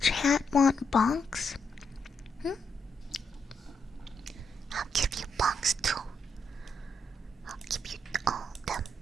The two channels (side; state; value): both; normal; correlation 0.79